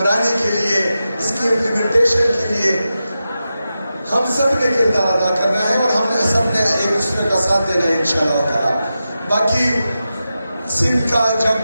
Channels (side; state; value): both; inverted; correlation -0.91